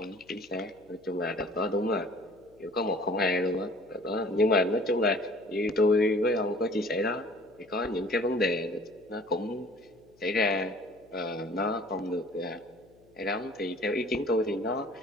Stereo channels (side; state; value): left; noise; hum, 30 dB below the sound